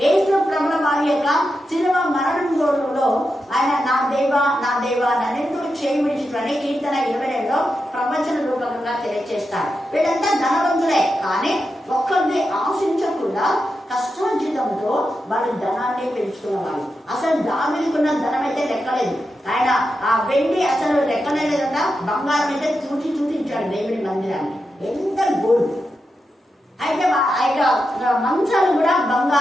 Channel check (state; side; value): normal; both; correlation 0.88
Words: యేసు ప్రభుల వారి యొక్క శిలువ మరణంలో ఆయన నా దేవా నా దేవా నన్నెందుకు చేయి విడిచిపోయి కీర్తన 22లో ప్రవచన రూపకంగా తెలియజేస్తాడు. వీళ్ళంతా ధనవంతులే కానీ ఒక్కరిని ఆశించకుండా కష్టోచితంతో వాళ్ళు ధనాన్ని పెంచుకున్న వాళ్ళు. అసలు దావీదుకున్న ధనం అయితే లెక్కలేదు. ఆయన ఆ వెండి అసలు లెక్కలేదంట, బంగారం అయితే చూసి చూపించాడు దేవుని మందిరాన్ని. ఎంత గోల్డ్. అయితే ఆ యొక్క మంచాలు కూడా